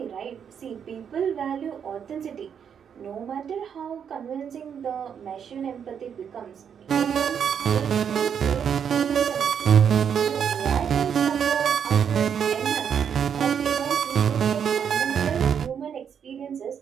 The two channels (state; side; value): quieter; left; 7.8 dB